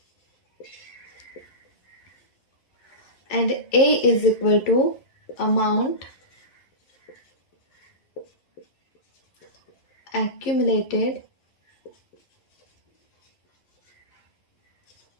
And A is equal to amount accumulated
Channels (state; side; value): late; right; 11 ms